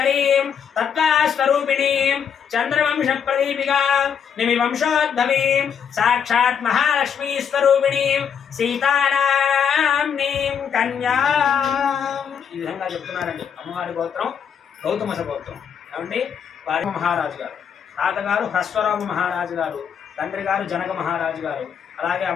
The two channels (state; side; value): quieter; right; 7.6 dB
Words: तत्त्वास्वरूपिणीं चन्द्रवंशप्रदीपिकां निमिवंशोद्भवीं साक्षात् महालक्ष्मीस्वरूपिणीं सीतानाम्नीं कन्यां ఈ విధంగా చెప్తున్నారండి. అమ్మవారి గోత్రం గౌతమస గోత్రం. ఏమండి వారి మహారాజు గారు, తాతగారు హ్రస్వరామ మహారాజు గారు, తండ్రి గారు జనక మహారాజు గారు, అలాగే